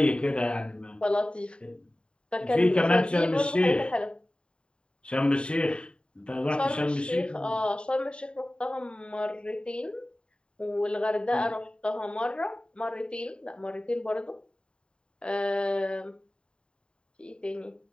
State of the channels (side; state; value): right; late; 0.052 ms